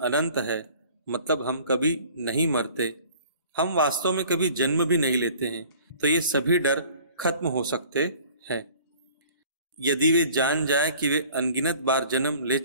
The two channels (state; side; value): inverted; both; correlation -0.50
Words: अनंत है, मतलब हम कभी नहीं मरते, हम वास्तव में कभी जन्म भी नहीं लेते हैं, तो ये सभी डर खत्म हो सकते हैं। यदि वे जान जाए कि वे अनगिनत बार जन्म ले